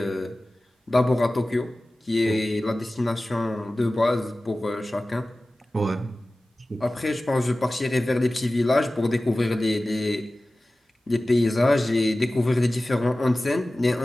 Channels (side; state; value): both; normal; correlation 0.96